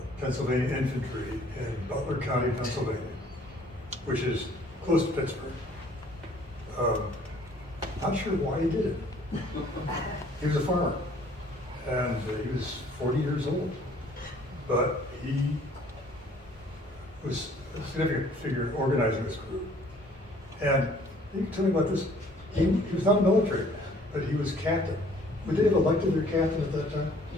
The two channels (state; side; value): normal; both; correlation 0.57